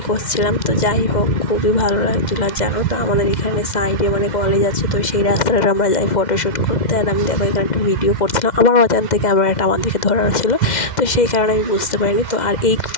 করছিলাম। তো যাই হোক, খুবই ভালো লাগছিলো। আর জানো তো আমাদের এখানে সাইডে কলেজ আছে, তো সেই রাস্তাটা আমরা যাই ফটোশ্যুট করতে। আর আমি দেখো এখানে একটা ভিডিও করছিলাম, আমার অজান্তে ক্যামেরাটা আমার দিকে ধরানো ছিল, তো সেই কারণে আমি বুঝতে পারিনি। তো আর এই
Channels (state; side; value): late; right; 2.1 ms